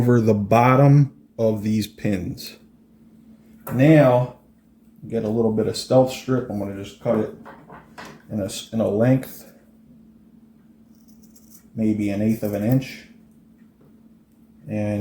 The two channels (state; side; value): identical; both; correlation 1.00